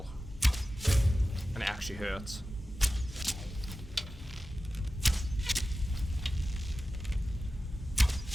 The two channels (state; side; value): normal; both; correlation 0.94